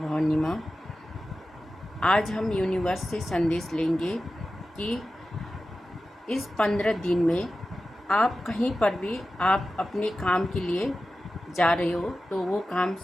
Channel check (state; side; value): normal; both; correlation 0.94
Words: माँ। आज हम यूनिवर्स से संदेश लेंगे कि इस 15 दिन में आप कहीं पर भी आप अपने काम के लिए जा रहे हो तो वो काम